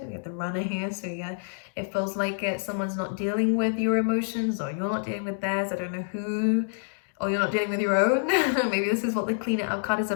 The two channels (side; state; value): right; silent; digital silence